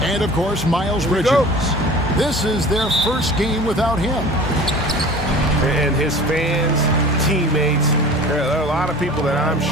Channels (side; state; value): both; normal; correlation 0.41